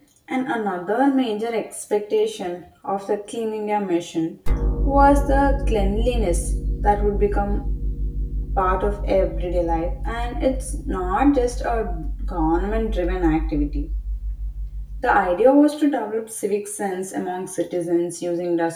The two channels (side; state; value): both; identical; correlation 1.00